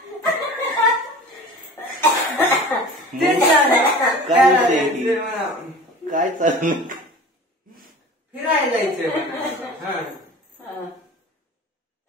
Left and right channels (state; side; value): normal; both; correlation 0.39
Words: काय विषय? काय चालू फिरायला जायचंय